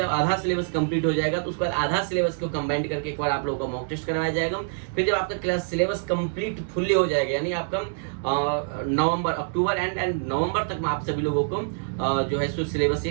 आधा सिलेबस कंप्लीट हो जाएगा तो उसके बाद आधा सिलेबस को कंबाइन करके एक बार आप लोगों का मॉक टेस्ट करवाया जाएगा। फिर जब आपका क्लास सिलेबस कंप्लीट फुल्ली हो जाएगा यानी आपका नवंबर, अक्टूबर एंड नवंबर तक में आप सभी लोगों को जो है सो सिलेबस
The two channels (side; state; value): left; silent; digital silence